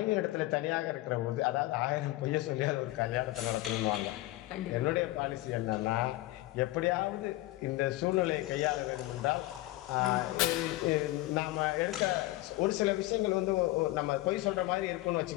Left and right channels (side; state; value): right; quieter; 17.9 dB